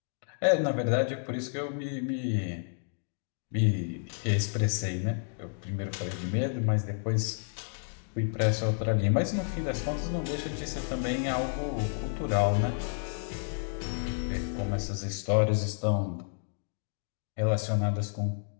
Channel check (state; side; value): silent; right; digital silence